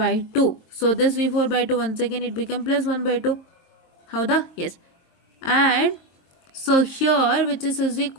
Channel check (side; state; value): right; late; 22 ms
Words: So this V4/2 once again it become plus 1/2. ಹೌದಾ? Yes. And so here which is